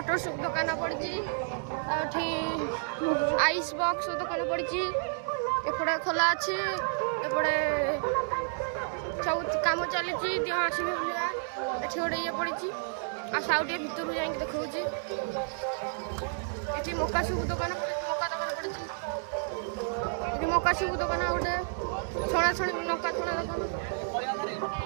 सूप दुकान पड़ी आइस बॉक्स दुकान पड़ी एपटे खोला अच्छी एपटे सब कम चली दिह आसवे ये गोटे ये पड़ी आउटे भितर जा देखा ये मका सूप दुकान पड़ी मका सूप दुकान गोटे छणा छणी लंका छणा दुकान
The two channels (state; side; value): silent; left; digital silence